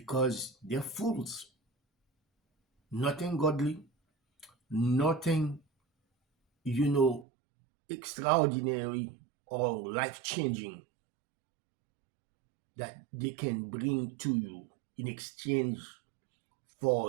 they're fools. Nothing godly, nothing, extraordinary or life-changing that they can bring to you in exchange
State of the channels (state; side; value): drops out; left; at 7.2 s